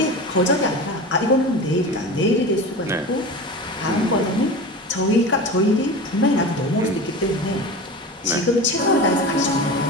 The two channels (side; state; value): both; normal; correlation 0.31